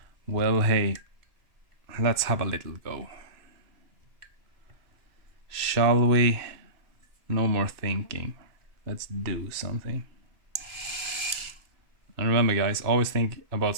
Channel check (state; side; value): late; left; 2.3 ms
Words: well, hey, let's have a little go. Shall we? No more thinking. Let's do something. And remember guys, always think about